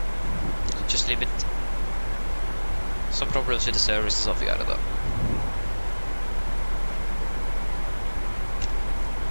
Just leave it. Some problems with the service and stuff, yeah, though.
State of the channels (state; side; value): inverted; both; correlation -1.00